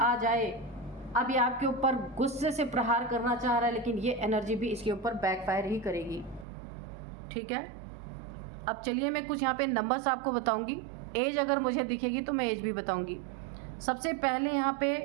जाए, अब ये आपके ऊपर गुस्से से प्रहार करना चाह रहा है, लेकिन ये एनर्जी भी इसके ऊपर बैकफायर ही करेगी। ठीक है, अब चलिए मैं कुछ यहाँ पे नंबर्स आपको बताऊंगी। एज अगर मुझे दिखेगी तो मैं एज भी बताऊंगी। सबसे पहले यहाँ पे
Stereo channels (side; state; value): left; drops out; at 6.5 s